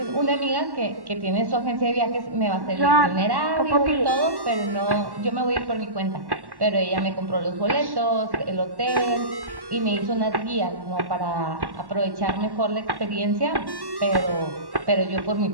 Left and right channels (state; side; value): late; left; 1.1 ms